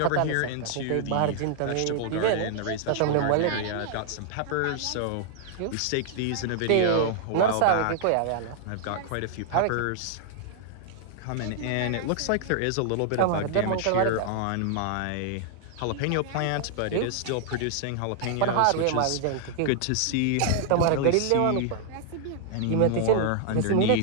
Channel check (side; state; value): both; different; correlation -0.01